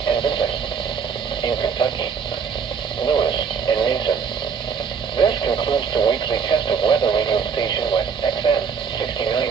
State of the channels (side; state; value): left; quieter; 6.3 dB